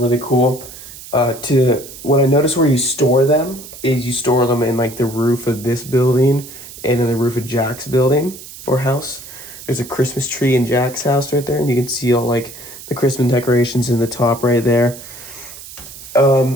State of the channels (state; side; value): noise; right; hiss, 15 dB below the sound